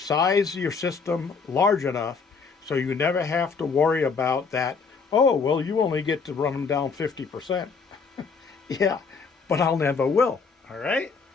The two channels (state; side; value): quieter; right; 5.1 dB